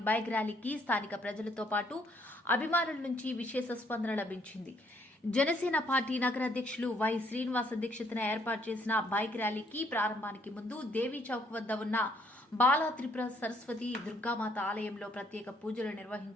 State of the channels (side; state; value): both; normal; correlation 0.68